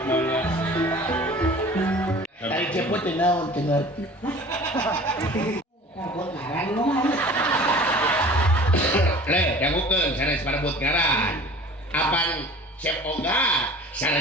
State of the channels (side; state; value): both; normal; correlation 0.44